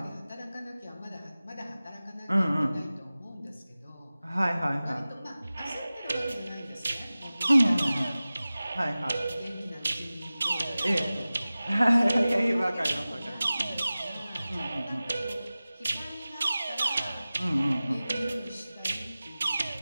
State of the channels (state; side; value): inverted; both; correlation -0.97